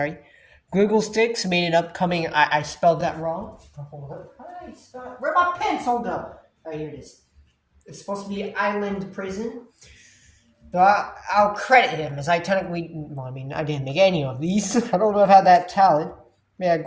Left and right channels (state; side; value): identical; both; correlation 1.00